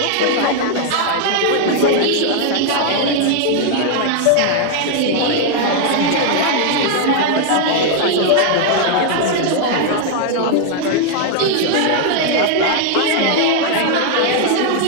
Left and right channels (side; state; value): both; different; correlation 0.00